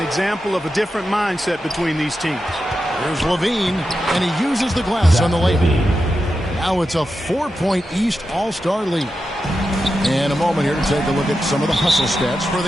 example of a different mindset between these teams. There's Levine, and he uses the glass on the layup. Now it's a 4-point East All-Star lead. And a moment here to take a look at some of the hustle stats for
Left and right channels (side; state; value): both; normal; correlation 0.89